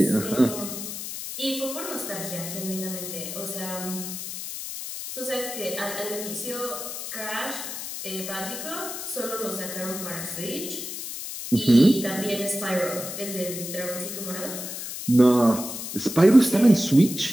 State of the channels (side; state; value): left; noise; hiss, 7 dB below the sound